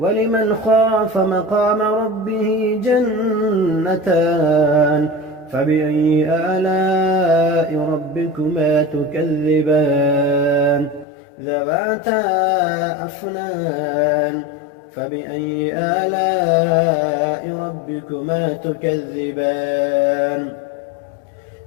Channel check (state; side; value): drops out; right; at 11.1 s